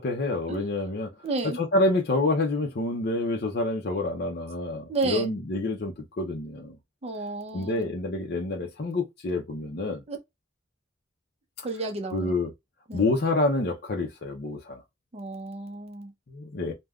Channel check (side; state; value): both; normal; correlation 0.25